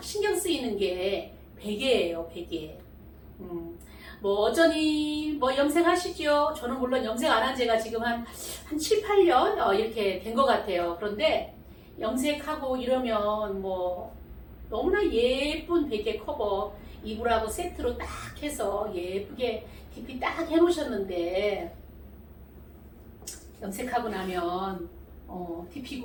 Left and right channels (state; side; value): identical; both; correlation 1.00